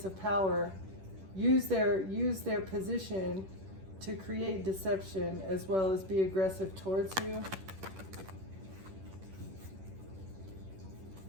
of power use their position to create deception as well as be aggressive towards you.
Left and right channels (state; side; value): late; left; 10 ms